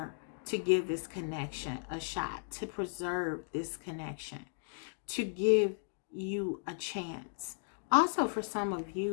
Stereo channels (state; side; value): silent; right; digital silence